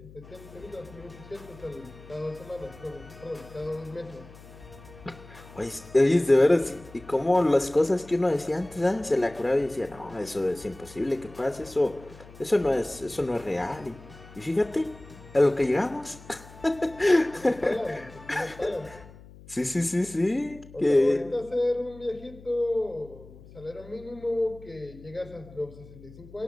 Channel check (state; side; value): noise; left; hum, 20 dB below the sound